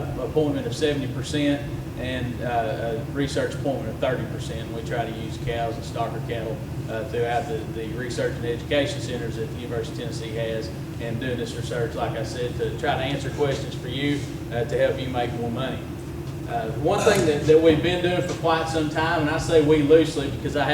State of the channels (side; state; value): both; identical; correlation 1.00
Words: appointment of 70% and a research appointment of 30%. We try to use cows and stocker cattle throughout the research and education centers that the University of Tennessee has, and doing this research, like I said, to try to answer questions for you to help you make more money. One thing that we've been doing for quite some time, and I say we loosely because I